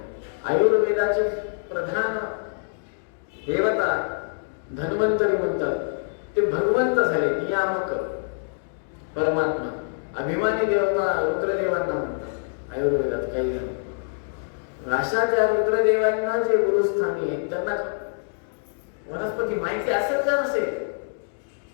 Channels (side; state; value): right; silent; digital silence